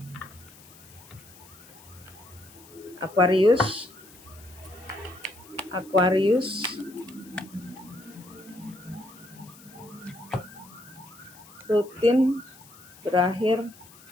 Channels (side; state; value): left; noise; hiss, 22 dB below the sound